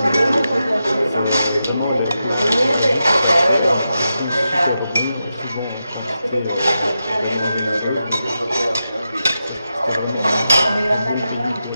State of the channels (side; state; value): both; inverted; correlation -0.88